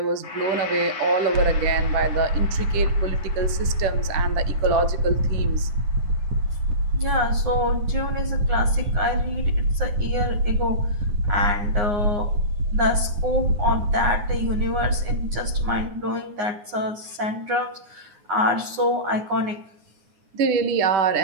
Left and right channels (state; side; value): late; left; 9.7 ms